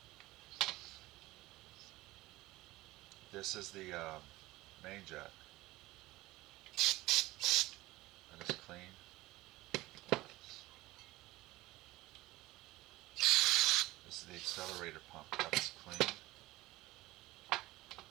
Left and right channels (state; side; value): quieter; left; 18.5 dB